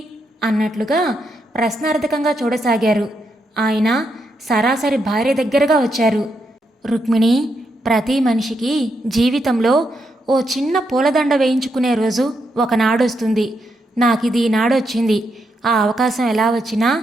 అన్నట్లుగా ప్రశ్నార్థకంగా చూడసాగారు. ఆయన సరాసరి భార్య దగ్గరగా వచ్చారు. రుక్మిణి, ప్రతి మనిషికి జీవితంలో ఓ చిన్న పూలదండ వేయించుకునే రోజు ఒకనాడొస్తుంది. నాకిది ఈనాడొచ్చింది. ఆ అవకాశం ఎలా వచ్చినా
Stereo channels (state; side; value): normal; both; correlation 0.81